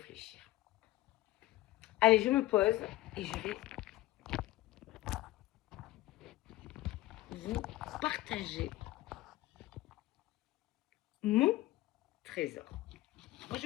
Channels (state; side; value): quieter; right; 16.9 dB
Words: Allez, je me pose et je vais vous partager mon trésor. Moi,